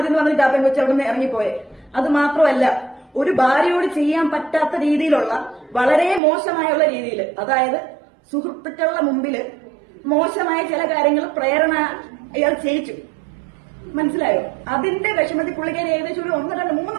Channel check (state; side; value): drops out; left; at 6.2 s